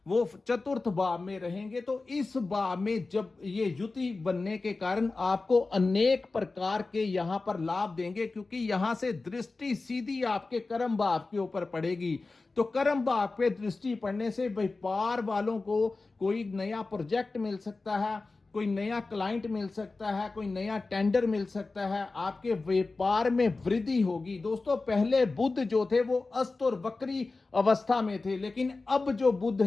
वो चतुर्थ भाव में रहेंगे। तो इस भाव में जब ये युति बनने के कारण आपको अनेक प्रकार के यहां पर लाभ देंगे, क्योंकि यहां से दृष्टि सीधी आपके कर्म भाव के ऊपर पड़ेगी। तो कर्म भाव पे दृष्टि पड़ने से व्यापार वालों को कोई नया प्रोजेक्ट मिल सकता है, कोई नया क्लाइंट मिल सकता है, कोई नया टेंडर मिल सकता है, आपके व्यापार में वृद्धि होगी। दोस्तों, पहले बुध जो थे वो अस्त और वक्री अवस्था में थे, लेकिन अब जो बुध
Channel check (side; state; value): right; quieter; 3.6 dB